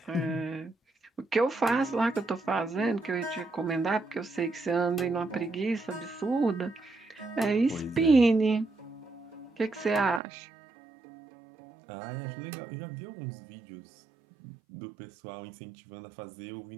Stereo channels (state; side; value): drops out; left; at 10.2 s